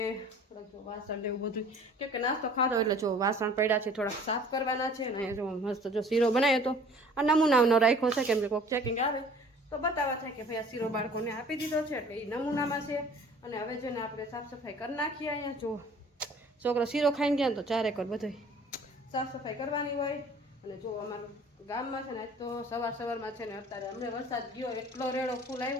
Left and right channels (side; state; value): both; normal; correlation 0.50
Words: થોડાક જો વાસણ એવું બધું, કેમ કે નાસ્તો ખાધો એટલે જો વાસણ પડ્યા છે થોડાક સાફ કરવાના છે. અને જો મસ્ત જો શીરો બનાવ્યો તો આ નમૂનાનો રાખ્યો છે, કેમ કે કોઈક ચેકિંગ આવે તો બતાવવા થાય કે ભાઈ આ શીરો બાળકોને આપી દીધો છે એટલે એ નમૂનામાં છે. અને હવે છે ને આપણે સાફ સફાઈ કરી નાખીએ. અહીંયા જો છોકરો શીરો ખાઈને ગયા ને તો ચારે કર બધું સાફ સફાઈ કરવાની હોય. અને જો અમારું ગામમાં છે ને તો સવારમાં છે ને અત્યારે અમને વરસાદ ગયો એટલો રેડો ફૂલ